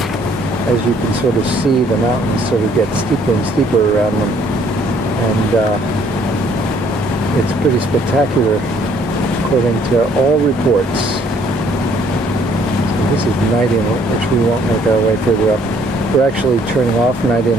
as you can sort of see, the mountains sort of get steeper and steeper around them. And it's pretty spectacular according to all reports. So this is Night Inlet, which we won't make our way further up. We're actually turning off Night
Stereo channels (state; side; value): normal; both; correlation 0.63